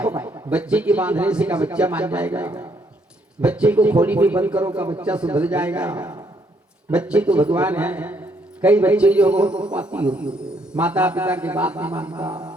बच्चे के बांधने से का बच्चा मान जाएगा, बच्चे को खोली में बंद करो का बच्चा सुधर जाएगा। बच्चे तो भगवान है। कई बच्चे जो बहुत पाती होती, माता पिता की बात नहीं मानता,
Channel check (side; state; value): both; normal; correlation 0.70